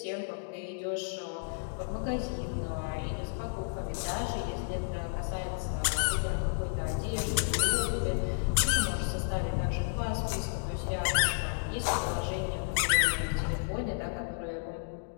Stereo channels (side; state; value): right; silent; digital silence